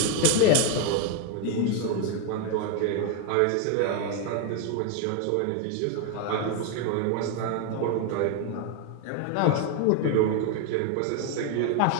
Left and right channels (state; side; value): different; both; correlation 0.01